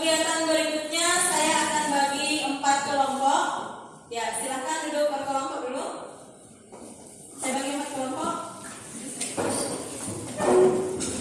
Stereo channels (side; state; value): both; identical; correlation 1.00